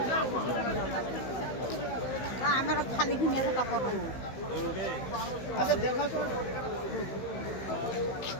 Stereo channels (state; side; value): late; right; 16 ms